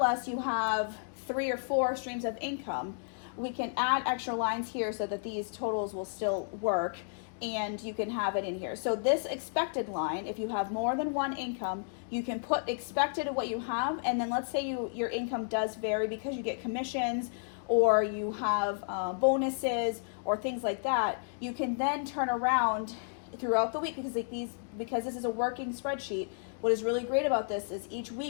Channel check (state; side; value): silent; right; digital silence